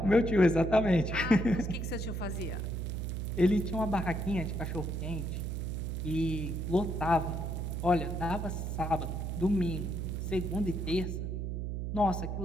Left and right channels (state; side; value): noise; right; hum, 3 dB below the sound